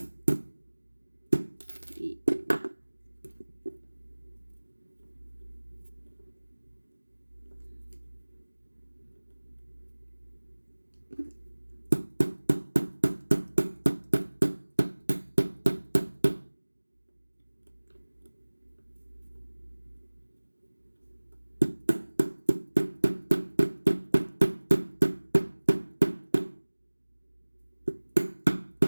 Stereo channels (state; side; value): inverted; both; correlation -1.00